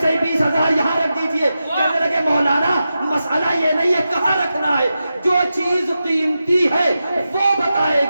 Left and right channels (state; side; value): inverted; both; correlation -0.90